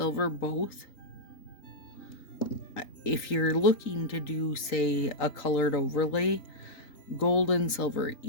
both, if you're looking to do, say, a colored overlay, gold and silver,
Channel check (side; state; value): right; late; 3.9 ms